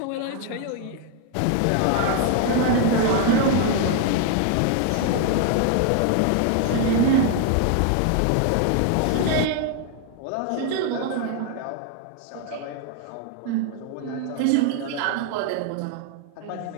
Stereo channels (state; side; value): different; both; correlation 0.00